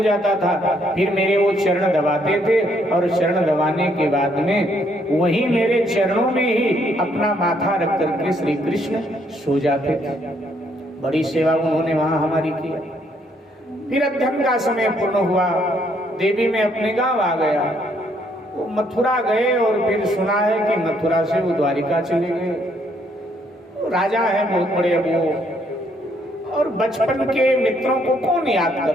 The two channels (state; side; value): normal; both; correlation 0.70